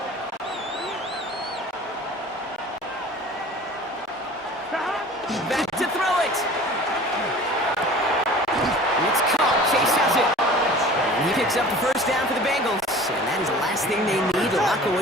Back to throw it. It's caught. Chase has it. And he picks up the first down for the Bengals. And that is the last thing they need to lock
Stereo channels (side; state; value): both; normal; correlation 0.43